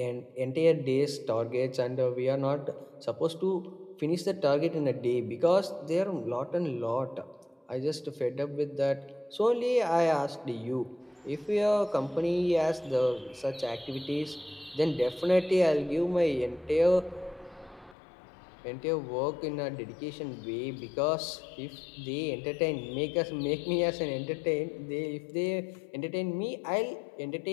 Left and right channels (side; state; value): right; drops out; at 17.9 s